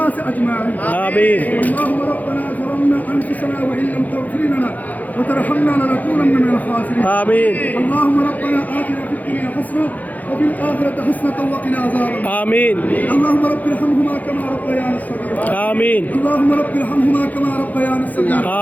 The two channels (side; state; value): right; late; 0.080 ms